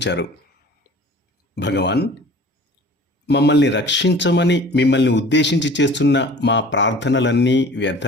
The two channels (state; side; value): normal; both; correlation 0.45